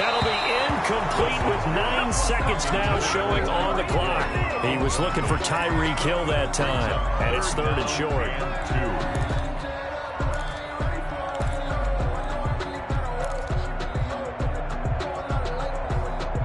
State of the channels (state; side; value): identical; both; correlation 1.00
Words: be incomplete with 9 seconds now showing on the clock. He was looking for Tyreek Hill that time, and it's 3rd and short. 2.